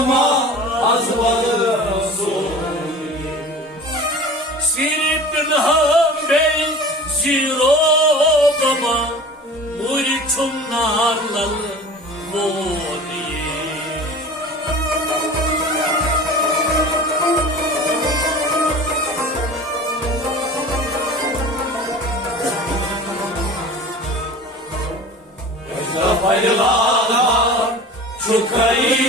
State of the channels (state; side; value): normal; both; correlation 0.39